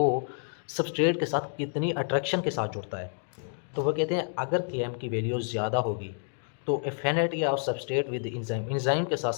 सबस्ट्रेट के साथ कितनी अट्रैक्शन के साथ जुड़ता है। तो वो कहते हैं अगर के एम की वैल्यू ज़्यादा होगी तो affinity of substrate with enzyme, enzyme के साथ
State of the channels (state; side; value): silent; right; 58 dB below the other